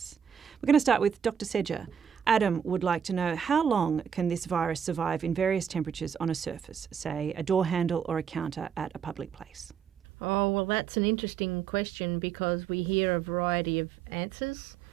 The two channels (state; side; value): quieter; left; 7.9 dB